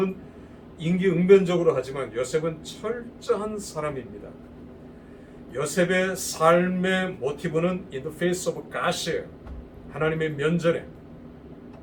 임기응변적으로 하지만 요셉은 철저한 사람입니다. 요셉의 삶의 모티브는 in the face of God이에요. 하나님의 면전에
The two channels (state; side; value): identical; both; correlation 1.00